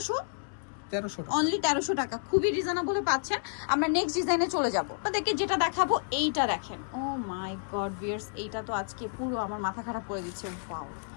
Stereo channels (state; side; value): silent; right; 58 dB below the other